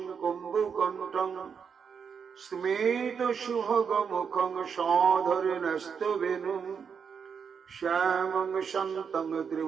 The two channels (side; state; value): left; quieter; 6.6 dB